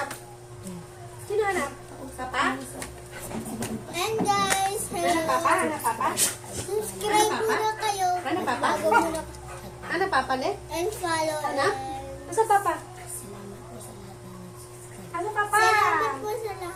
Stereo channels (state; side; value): identical; both; correlation 1.00